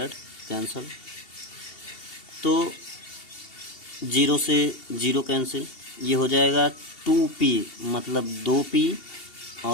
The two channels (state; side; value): late; right; 2.7 ms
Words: कैंसिल, तो 0 से 0 कैंसिल, ये हो जाएगा 2P मतलब 2P